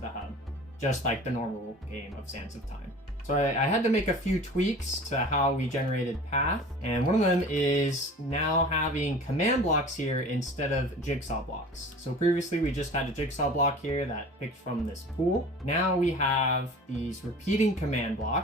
the hub, just like the normal game of Sands of Time. So I had to make a few tweaks to how we generated path, and one of them is now having command blocks here instead of jigsaw blocks. So previously we just had a jigsaw block here that picked from this pool. Now we have these repeating command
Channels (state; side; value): normal; both; correlation 0.41